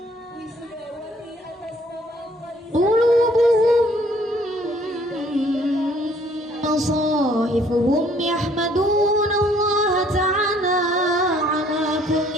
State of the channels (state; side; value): normal; both; correlation 0.61